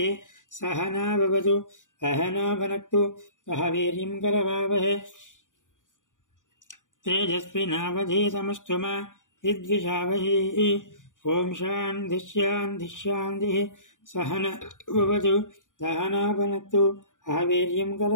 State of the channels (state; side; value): late; right; 0.87 ms